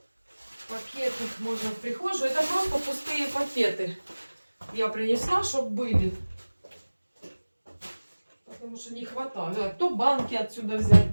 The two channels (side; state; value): both; inverted; correlation -1.00